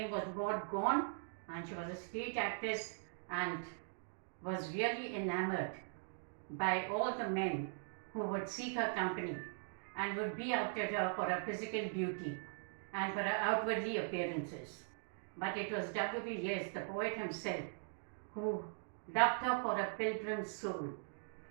was Maud Gonne, and she was a stage actress and was really enamored by all the men who would seek her company and would be after her for her physical beauty and for her outwardly appearances. But it was W.B. Yeats, the poet himself, who loved her for a pilgrim soul.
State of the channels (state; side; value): silent; left; digital silence